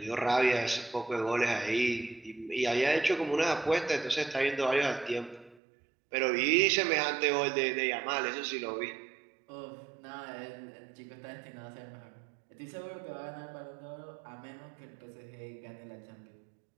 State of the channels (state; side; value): drops out; left; at 5.6 s